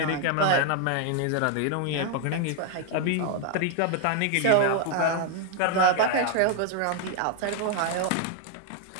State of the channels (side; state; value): both; different; correlation 0.00